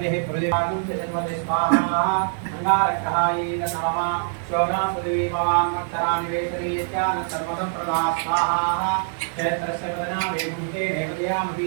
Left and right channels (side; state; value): left; silent; digital silence